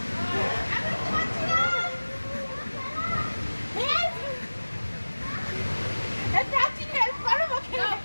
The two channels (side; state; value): both; inverted; correlation -1.00